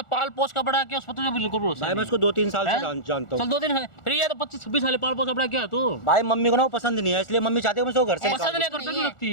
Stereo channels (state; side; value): late; right; 1.4 ms